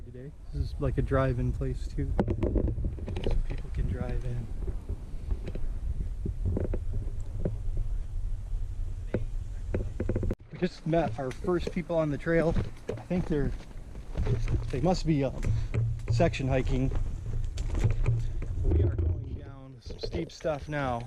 today. This is like a drive-in place too. So people can drive in. Just met our first people on the trail. I think they must be section hiking. We are going down some steep stuff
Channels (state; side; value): identical; both; correlation 1.00